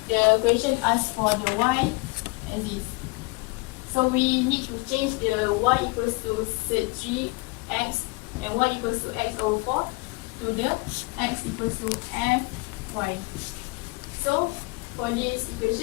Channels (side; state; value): right; quieter; 26.5 dB